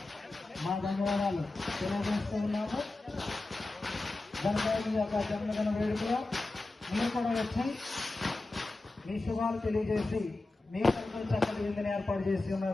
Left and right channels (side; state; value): right; quieter; 3.1 dB